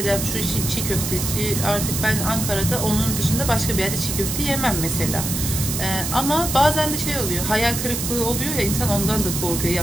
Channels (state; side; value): noise; right; hiss, 3 dB below the sound